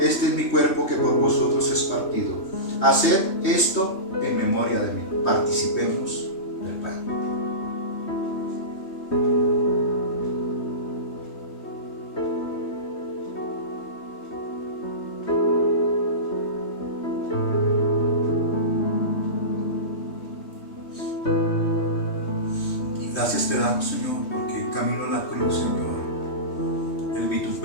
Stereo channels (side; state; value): right; late; 3.2 ms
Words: es mi cuerpo que por vosotros es partido. Haced esto en memoria de mí. Participemos del pan. Gracias te damos, Señor, porque en camino a la cruz, Señor, el